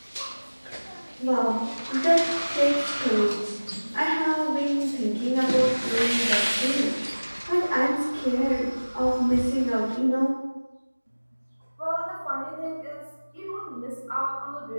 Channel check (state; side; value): inverted; both; correlation -1.00